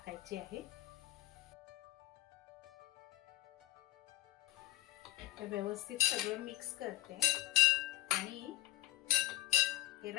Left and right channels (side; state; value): right; quieter; 17.2 dB